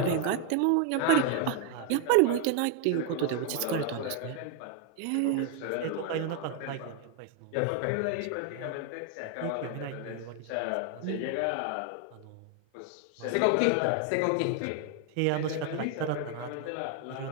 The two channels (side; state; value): both; different; correlation 0.01